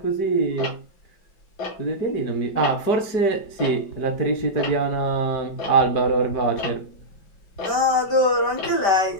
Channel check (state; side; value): late; right; 5.1 ms